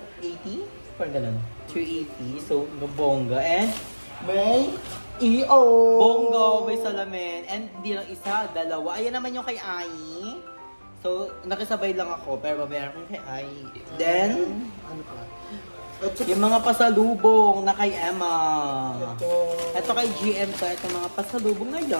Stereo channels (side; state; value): both; inverted; correlation -1.00